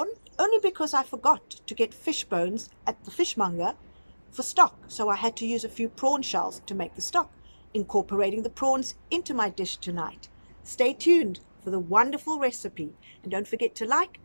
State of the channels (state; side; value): inverted; both; correlation -1.00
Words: only because I forgot to get fish bones at the fishmonger for stock, so I had to use a few prawn shells to make the stock, incorporating the prawns into my dish tonight. Stay tuned for the wonderful recipe, and don't forget to like